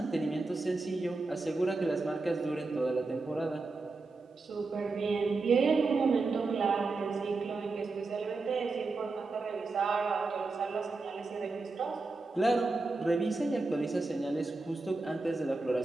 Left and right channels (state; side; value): quieter; left; 3.6 dB